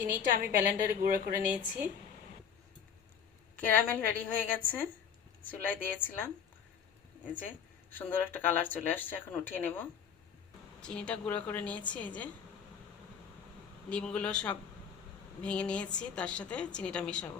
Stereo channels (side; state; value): right; quieter; 7.5 dB